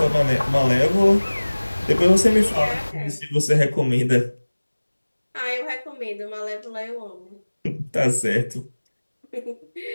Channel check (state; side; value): inverted; both; correlation -1.00